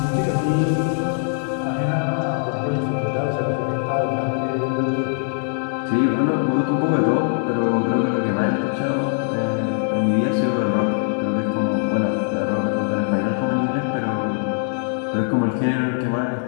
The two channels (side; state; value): right; silent; digital silence